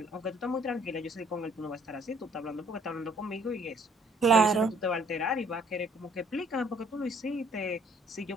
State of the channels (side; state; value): both; normal; correlation 0.61